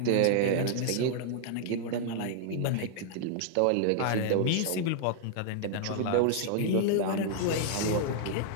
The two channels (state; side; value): different; both; correlation -0.01